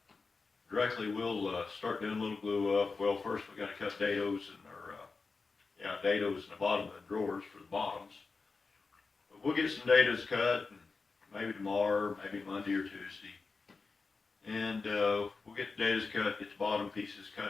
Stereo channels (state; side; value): quieter; right; 4.3 dB